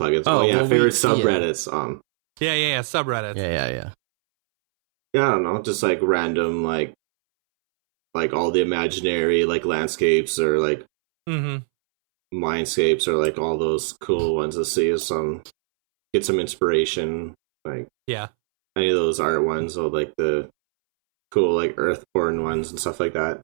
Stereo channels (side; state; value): left; silent; 64 dB below the other